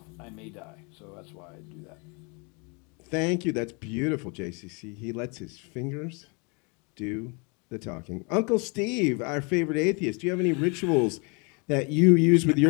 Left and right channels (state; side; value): quieter; right; 32.7 dB